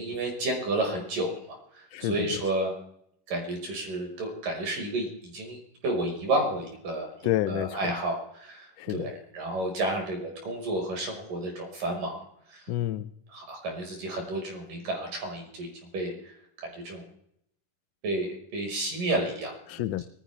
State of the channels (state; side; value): late; left; 11 ms